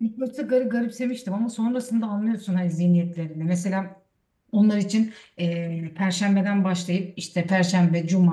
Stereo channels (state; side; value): identical; both; correlation 1.00